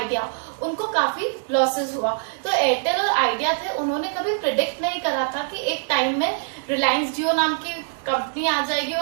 उनको काफी लॉसेस हुआ। तो एयरटेल और आइडिया थे, उन्होंने कभी प्रिडिक्ट नहीं करा था कि एक टाइम में रिलायंस जियो नाम की कंपनी आ जाएगी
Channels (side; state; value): left; silent; 63 dB below the other